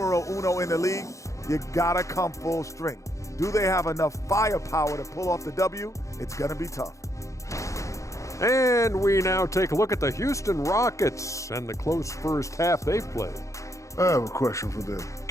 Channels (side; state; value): right; late; 0.15 ms